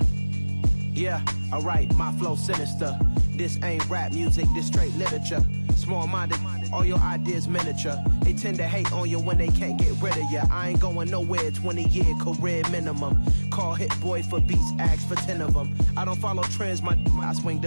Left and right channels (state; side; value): inverted; both; correlation -1.00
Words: Yeah, alright, my flow sinister. This ain't rap music, this straight literature. Small-minded, all your ideas miniature. They tend to hate on you when they can't get rid of you. I ain't going nowhere, 20-year career minimum. Call Hit Boy for beats, ask for 10 of them. I don't follow trends, I swing